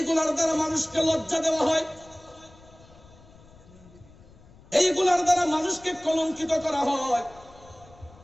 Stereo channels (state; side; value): noise; left; rumble, 24 dB below the sound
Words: দ্বারা মানুষকে লজ্জা দেওয়া হয়, এইগুলার দ্বারা মানুষকে কলঙ্কিত করা হয়।